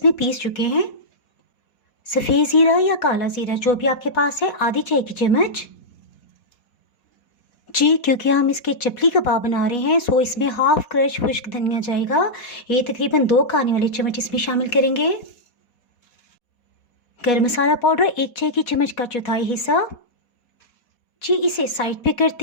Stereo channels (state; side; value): late; right; 4.2 ms